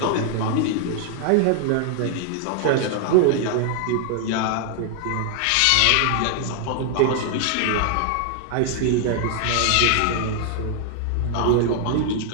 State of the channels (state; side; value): different; both; correlation 0.00